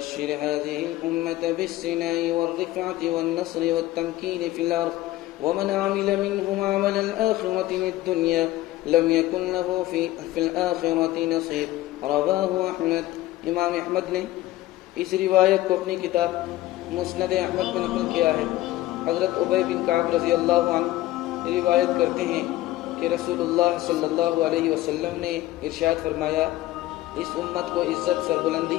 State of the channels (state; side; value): quieter; right; 16.1 dB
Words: هذه الأمة بالسناء والرفعة والنصر والتمكين في الأرض ومن عمل منهم عمل الآخرة للدنيا لم يكن له في الآخرة نصيب رواه أحمد. امام احمد نے اس روایت کو اپنی کتاب مسند احمد میں نقل کیا ہے. حضرت ابی بن کعب رضی اللہ عنہ روایت کرتے ہیں کہ رسول اللہ صلی اللہ علیہ وسلم نے ارشاد فرمایا اس امت کو عزت سربلندی